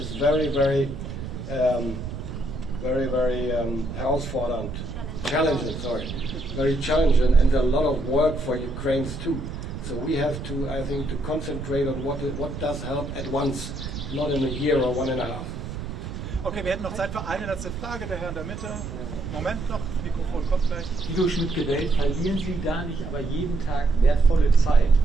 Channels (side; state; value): right; noise; rumble, 8 dB below the sound